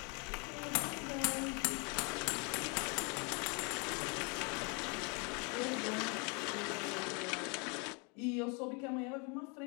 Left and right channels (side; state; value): right; quieter; 33.3 dB